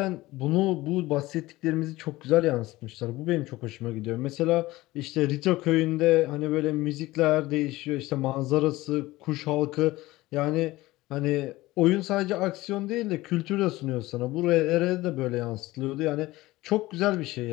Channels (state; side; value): quieter; right; 18.6 dB